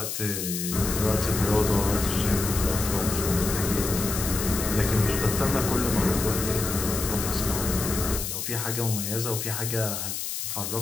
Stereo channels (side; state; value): left; noise; hiss, 4 dB below the sound